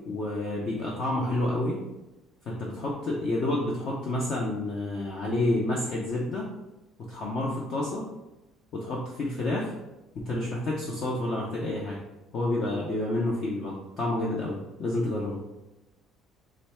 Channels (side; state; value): both; normal; correlation 0.68